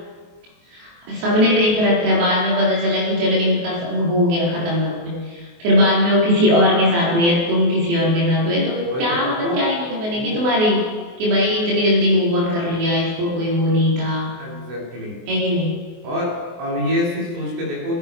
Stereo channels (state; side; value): late; left; 23 ms